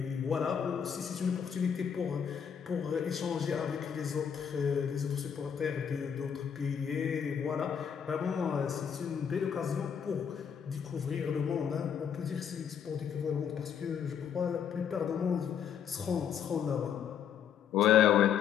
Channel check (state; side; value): quieter; right; 7.9 dB